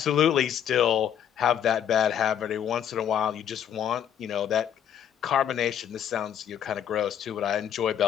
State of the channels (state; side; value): quieter; right; 9.4 dB